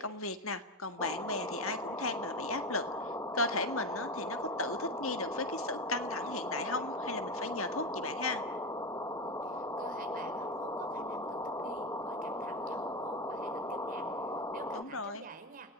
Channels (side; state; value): both; normal; correlation 0.16